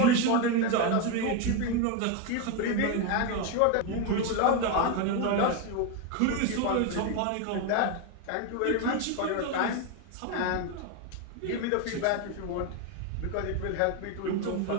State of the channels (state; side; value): different; both; correlation 0.02